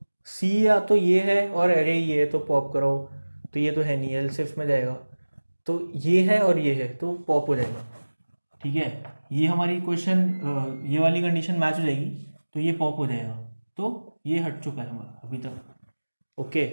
सी या तो ये है और एरे ये है, तो पॉप कराओ, तो ये तो है नहीं, एल्स इफ में जाएगा। तो ये है और ये है, तो पॉप हो जाएगा, ठीक है। ये हमारी क्वेश्चन, ये वाली कंडीशन मैच हो जाएगी, तो ये पॉप हो जाएगा। तो ये हट चुका है हमारा अभी तक। ओके,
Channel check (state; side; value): inverted; both; correlation -1.00